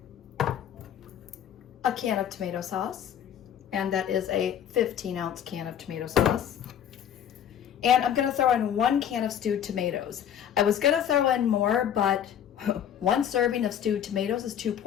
A can of tomato sauce, and that is a 15-ounce can of tomato sauce. And I'm going to throw in 1 can of stewed tomatoes. I was going to throw in more, but 1 serving of stewed tomatoes is 2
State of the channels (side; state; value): right; quieter; 9.5 dB